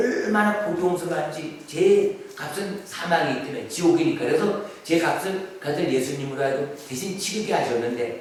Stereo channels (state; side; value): identical; both; correlation 1.00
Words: 고통스러운지 죄의 값은 사망이기 때문에 지옥이니까. 그래서 죄 값을 그 아들 예수님으로 하여금 대신 치르게